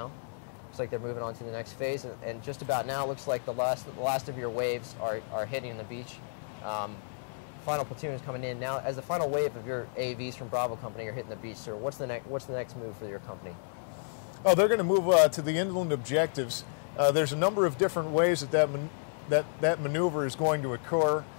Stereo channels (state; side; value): silent; right; digital silence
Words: Looks like they're moving on to the next phase, and just about now it looks like the last of your waves are hitting the beach. Final platoon is coming in now. As the final wave of your AAVs from Bravo Company are hitting the beach, sir, what's the next move for your company? Oh, they're going to move to the inland objectives. There's a number of different ways that maneuver is going to occur,